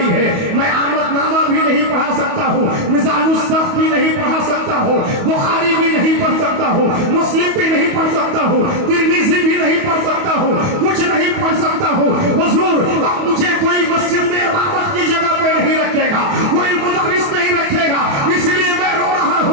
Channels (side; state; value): left; late; 28 ms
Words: है, मैं आमदनामा भी नहीं पढ़ा सकता हूँ, मिजानुस्सफ भी नहीं पढ़ा सकता हूँ, बुखारी भी नहीं पढ़ सकता हूँ, मुस्लिम भी नहीं पढ़ सकता हूँ, तिरमिज़ी भी नहीं पढ़ सकता हूँ, कुछ नहीं पढ़ सकता हूँ। हुजूर अब मुझे कोई मस्जिद में इमामत की जगह पे नहीं रखेगा, कोई मुदर्रिस नहीं रखेगा, इसलिए मैं रो रहा